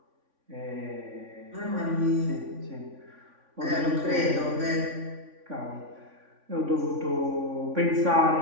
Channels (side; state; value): left; late; 3.5 ms